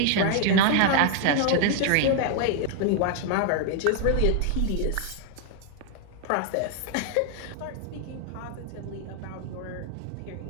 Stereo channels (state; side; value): different; both; correlation 0.00